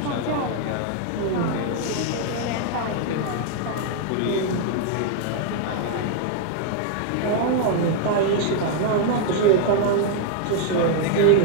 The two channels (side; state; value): both; different; correlation 0.00